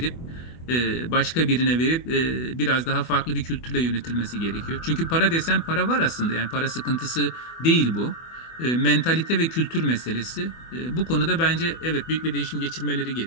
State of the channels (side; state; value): right; late; 24 ms